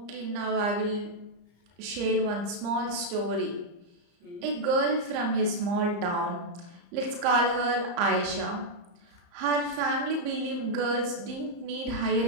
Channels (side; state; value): left; late; 34 ms